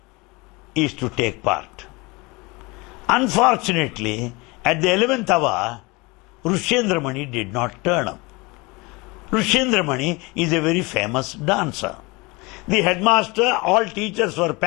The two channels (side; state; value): right; quieter; 25.5 dB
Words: is to take part. Unfortunately, at the 11th hour, Rushendra Mani did not turn up. Rushendra Mani is a very famous dancer. The headmaster, all teachers were